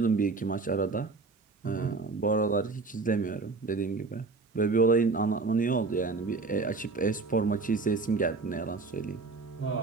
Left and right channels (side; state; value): left; quieter; 4.0 dB